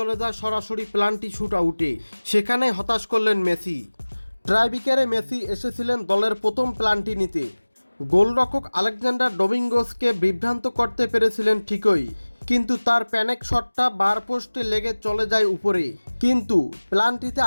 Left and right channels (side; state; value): both; inverted; correlation -1.00